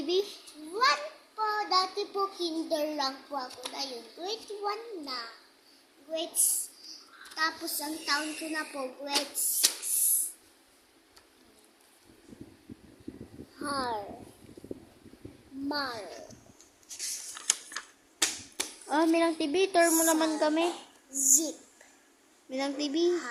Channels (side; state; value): both; identical; correlation 1.00